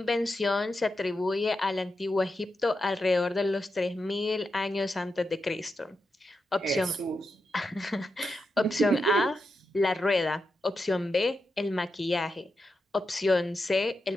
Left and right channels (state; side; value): normal; both; correlation 0.87